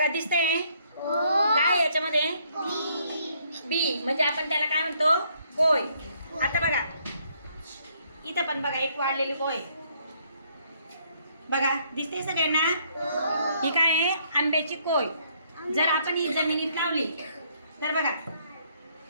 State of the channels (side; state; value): both; inverted; correlation -0.68